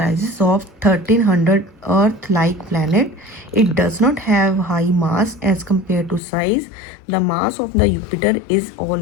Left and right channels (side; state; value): right; drops out; at 6.2 s